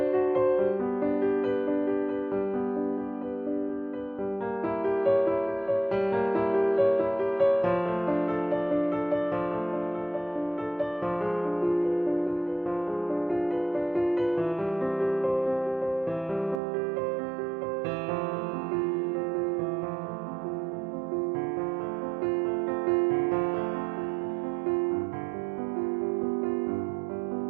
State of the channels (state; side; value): drops out; left; at 16.6 s